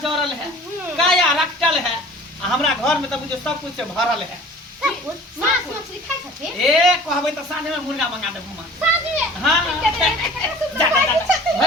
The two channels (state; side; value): normal; both; correlation 0.45